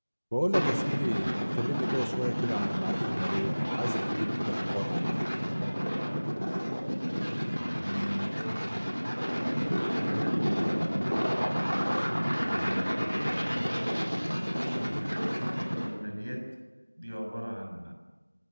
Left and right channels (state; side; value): inverted; both; correlation -1.00